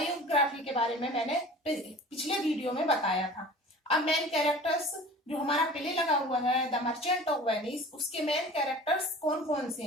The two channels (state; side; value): normal; both; correlation 0.42